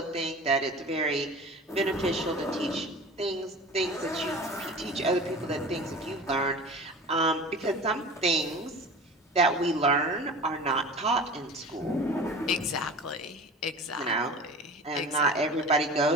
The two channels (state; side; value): normal; both; correlation 0.37